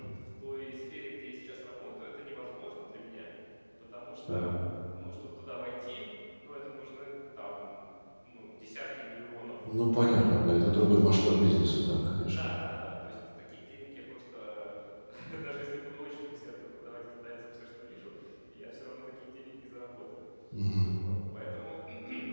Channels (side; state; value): both; inverted; correlation -1.00